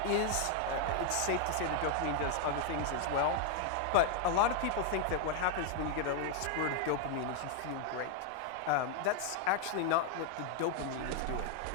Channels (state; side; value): different; both; correlation 0.00